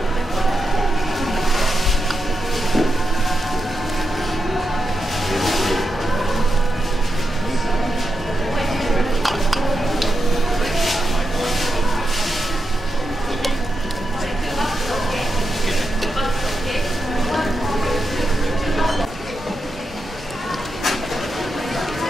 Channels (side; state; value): both; normal; correlation 0.87